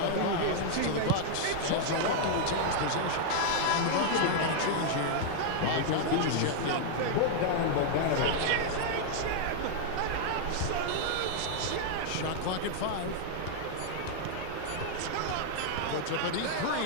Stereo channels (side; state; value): both; different; correlation -0.01